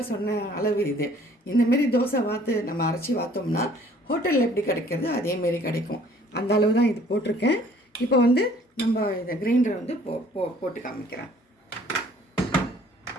சொன்ன அளவு இது. இந்தமாரி தோசை நம்ம அரைச்சி வாத்தோம்னா ஹோட்டலில் எப்படி கிடைக்கிறது அதேமாரி கிடைக்கும். அந்த அளவு தான் இது போட்டிருக்கேன். இப்போ வந்து நம்ம இதை கிரைண்டரை வந்து போட்டு காமிக்கிறேன்.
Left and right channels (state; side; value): normal; both; correlation 0.56